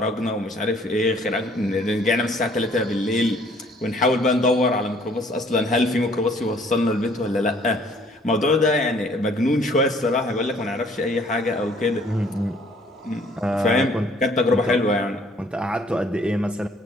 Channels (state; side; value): normal; both; correlation 0.59